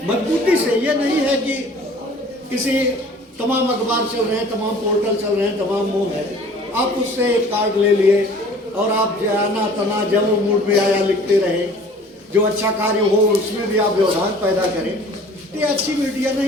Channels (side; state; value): both; normal; correlation 0.49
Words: मजबूती से। ये नहीं है कि किसी तमाम अखबार चल रहे हैं, तमाम पोर्टल चल रहे हैं, तमाम मुंह है, आप उससे एक कार्ड ले लिए और आप जाना तना जब मूड में आया लिखते रहे। जो अच्छा कार्य हो उसमें भी आप व्यवधान पैदा करें, ये अच्छी मीडिया